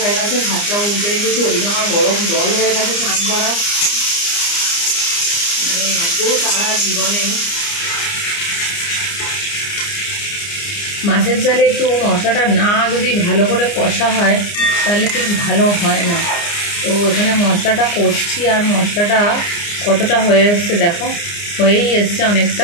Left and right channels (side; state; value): right; late; 29 ms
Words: গেছে, ভাতটা উল্টে রেখেছি, ওইদিকে আমার গরম জল হয়ে গেছে স্নান করা। মানে এত তারা জীবনে। মাছের জালে একটু মশলাটা না যদি ভালো করে কষা হয় তাহলে ঠিক ভালো হয় না। তো এখানে মশলাটা করছি, আর মশলাটা কতটা হয়ে এসছে দেখো, হয়েই এসছে